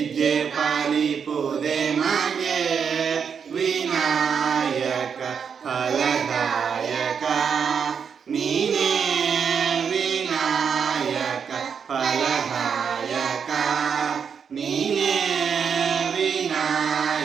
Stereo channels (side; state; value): left; quieter; 6.8 dB